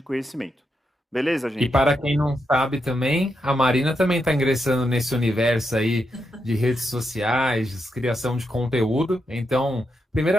conhecimento. Beleza, E gente? para quem não sabe também, a Marina também está ingressando nesse universo aí de redes sociais, de criação de conteúdo. Então,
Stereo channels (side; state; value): both; normal; correlation 0.84